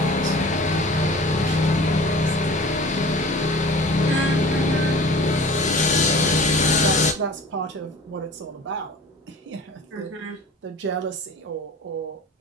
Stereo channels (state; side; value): normal; both; correlation 0.42